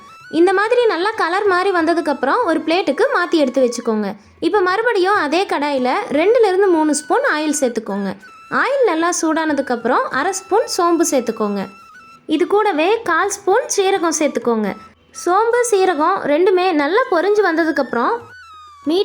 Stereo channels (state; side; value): identical; both; correlation 1.00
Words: இந்த மாதிரி நல்லா கலர் மாதிரி வந்ததுக்கப்புறம் ஒரு பிளேட்டுக்கு மாற்றி எடுத்து வச்சுக்கோங்க. இப்போ மறுபடியும் அதே கடாயில் 2லேருந்து 3 ஸ்பூன் ஆயில் சேர்த்துக்கோங்க. ஆயில் நல்லா சூடானதுக்கப்புறம் 1/2 ஸ்பூன் சோம்பு சேர்த்துக்கோங்க. இது கூடவே 1/4 ஸ்பூன் சீரகம் சேர்த்துக்கோங்க. சோம்பு சீரகம் ரெண்டுமே நல்லா பொரிஞ்சு வந்ததுக்கப்புறம்